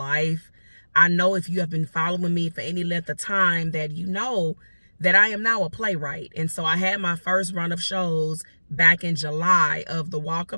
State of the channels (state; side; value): inverted; both; correlation -1.00